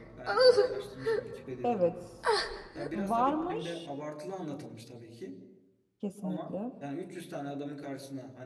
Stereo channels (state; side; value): identical; both; correlation 1.00